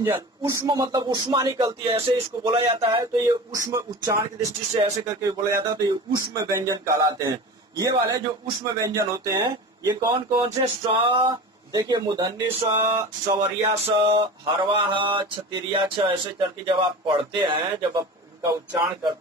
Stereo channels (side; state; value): both; normal; correlation 0.33